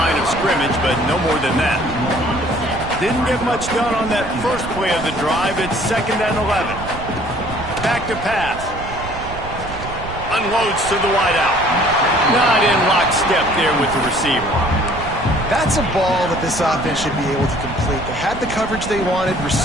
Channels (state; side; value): noise; right; rumble, 11 dB below the sound